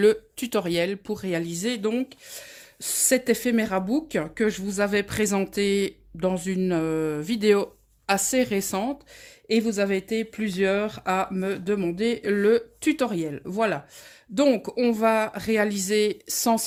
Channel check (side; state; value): both; identical; correlation 1.00